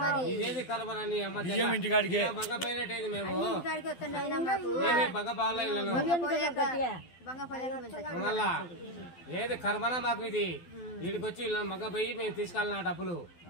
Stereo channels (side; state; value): right; late; 12 ms